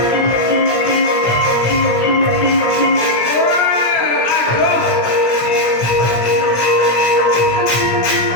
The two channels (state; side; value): late; right; 17 ms